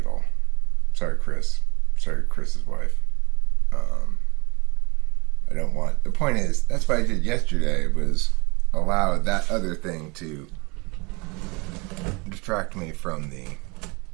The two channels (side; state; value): left; quieter; 27.8 dB